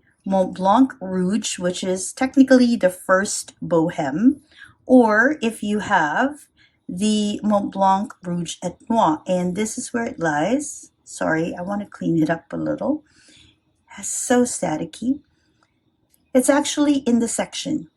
Montblanc Rouge, which is technically the first Boheme, or if you have the Montblanc Rouge et Noir? And this is where it lies. Sorry, I want to clean it up a little. It's so staticky. It's actually in the section.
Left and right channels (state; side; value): identical; both; correlation 1.00